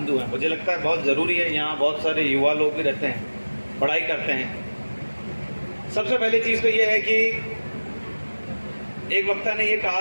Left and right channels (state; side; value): inverted; both; correlation -1.00